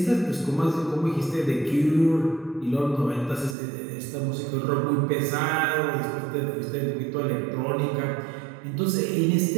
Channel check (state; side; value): drops out; left; at 3.6 s